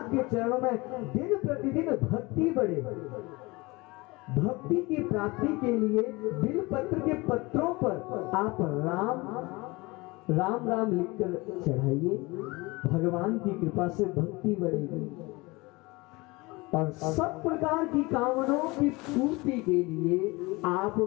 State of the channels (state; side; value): quieter; right; 23.8 dB